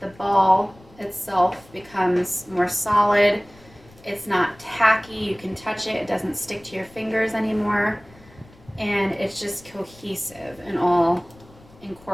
ball itself becomes more solid. It's not tacky. You can touch it. It doesn't stick to your fingers anymore. And it's just cohesive and all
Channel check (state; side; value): noise; left; rumble, 25 dB below the sound